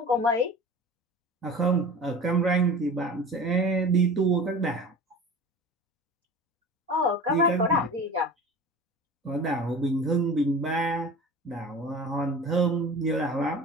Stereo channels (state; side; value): normal; both; correlation 0.37